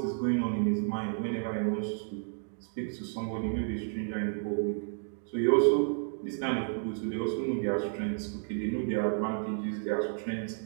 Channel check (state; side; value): silent; left; digital silence